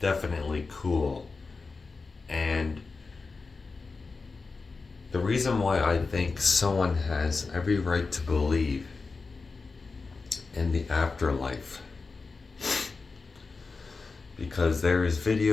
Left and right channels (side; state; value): right; quieter; 4.2 dB